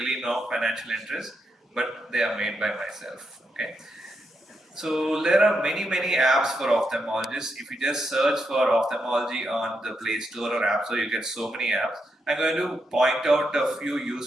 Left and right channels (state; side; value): normal; both; correlation 0.83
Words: no financial interest, but they are made by myself. Okay. So there are many apps for ophthalmologists. If you just search for ophthalmology on the Play Store or App Store, you get so many apps. I'm going to point out a few